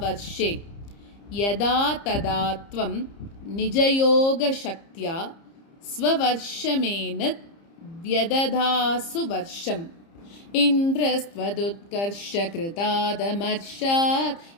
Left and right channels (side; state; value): right; late; 30 ms